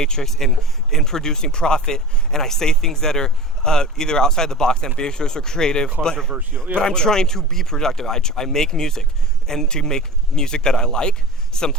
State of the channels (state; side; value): normal; both; correlation 0.35